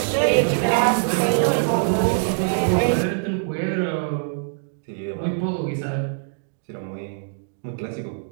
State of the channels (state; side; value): silent; left; digital silence